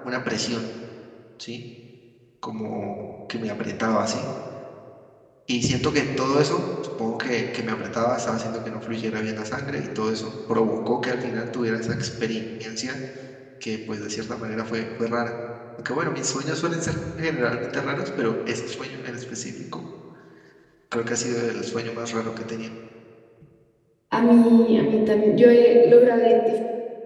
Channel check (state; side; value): identical; both; correlation 1.00